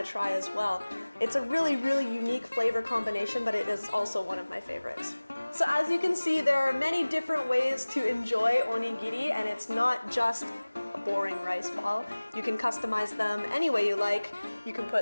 try as well. It's a really, really unique flavor combination, but it is also one of my favorites. So as you can see, there are many different ways to enjoy onigiri, and it's not just a boring rice ball. You can customize them any way you like. You can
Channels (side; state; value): both; inverted; correlation -1.00